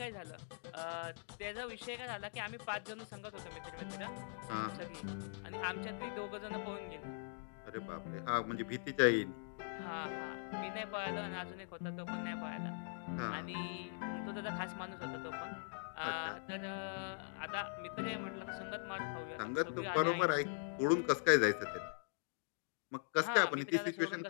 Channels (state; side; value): silent; right; digital silence